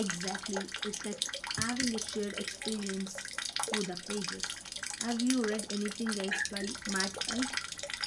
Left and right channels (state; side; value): identical; both; correlation 1.00